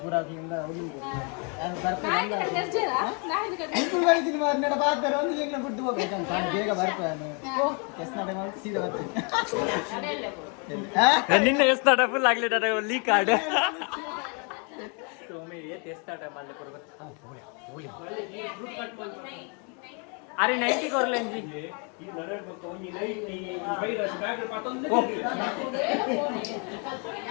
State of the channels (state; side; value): quieter; right; 36.0 dB